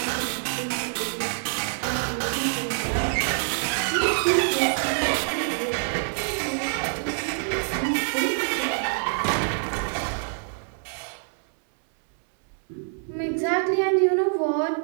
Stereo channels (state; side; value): silent; left; digital silence